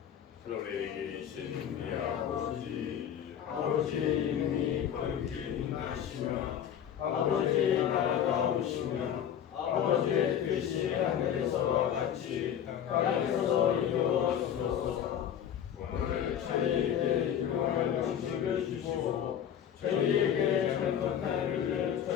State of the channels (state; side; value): quieter; right; 9.4 dB